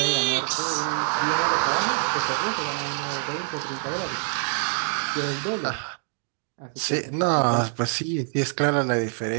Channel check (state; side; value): silent; left; 60 dB below the other